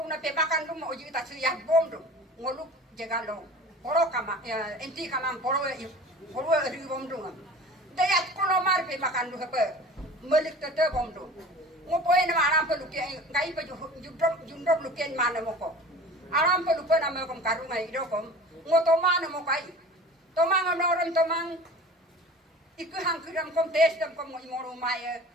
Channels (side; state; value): both; normal; correlation 0.40